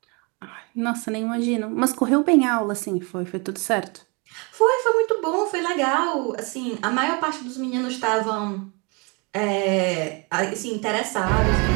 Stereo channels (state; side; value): quieter; left; 30.9 dB